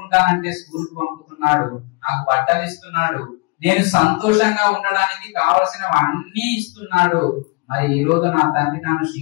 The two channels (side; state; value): right; quieter; 27.5 dB